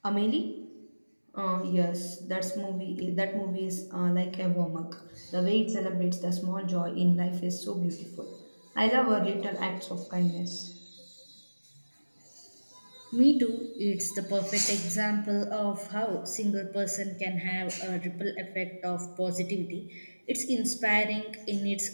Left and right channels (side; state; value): both; inverted; correlation -1.00